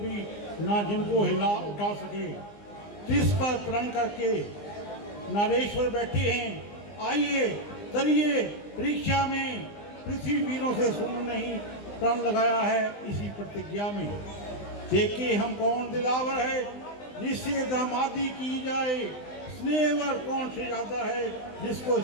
ना जिनको हिला उठा सके। तिस पर प्रण करके नारेश्वर बैठे हैं, आइए तरिए परीक्षा में, पृथ्वी वीरों से सुन नहीं प्रण लगाया है इसी प्रतिज्ञा में। देखे हम कौन दिलावर है जिससे दामादी की जाए, स्नेहवर कौन शहजादा है जिसको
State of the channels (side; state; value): right; late; 20 ms